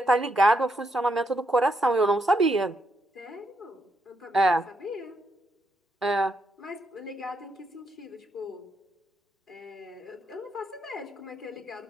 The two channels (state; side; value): normal; both; correlation 0.79